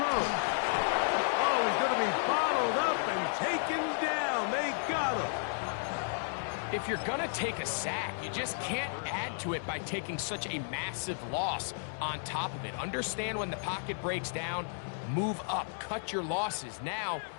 Oh, he's going to be bottled up and taken down. They got him. If you're going to take a sack, you just can't add to it by taking such a massive loss on top of it. Understand when the pocket breaks down, move up, cut your losses. Now,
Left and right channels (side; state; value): right; silent; digital silence